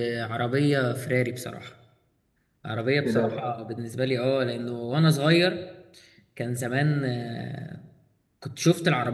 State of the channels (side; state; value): both; identical; correlation 1.00